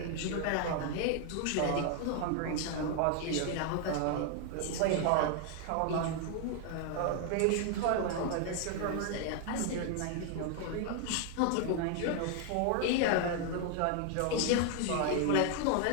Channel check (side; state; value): both; different; correlation 0.00